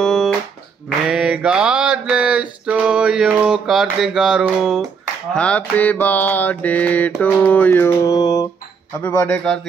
may God bless to you Karthik గారు, happy birthday to you. Happy birthday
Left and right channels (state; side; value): quieter; left; 5.8 dB